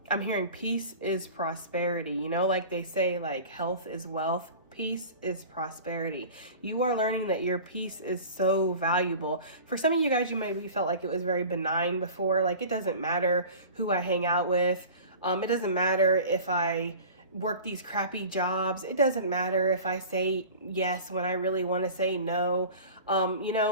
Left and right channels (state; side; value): inverted; both; correlation -0.39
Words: I'm hearing peace is prosperity. You know, like they say, like health is wealth. Peace is prosperity. You are learning that your peace is so valuable. For some of you guys, you maybe felt like it was very benign before. Like, it doesn't matter who I hang out with. It doesn't matter if I work these crappy jobs. It doesn't matter if I say yes when I really want to say no. You